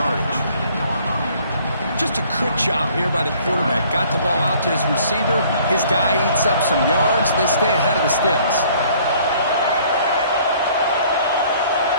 Just a good job here by the quarterback. Got the ball out to his receiver. His guy eats up some yards. They stay ahead of the sticks.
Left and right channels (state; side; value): inverted; both; correlation -0.57